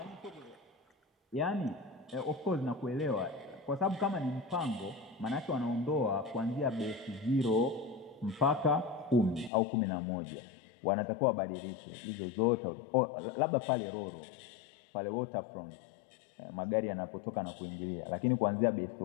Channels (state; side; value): drops out; right; at 9.5 s